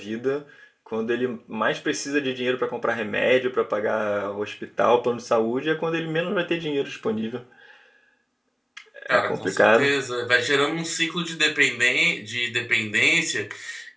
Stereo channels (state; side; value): identical; both; correlation 1.00